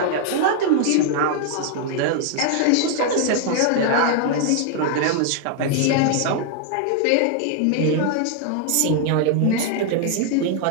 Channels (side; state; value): both; different; correlation 0.00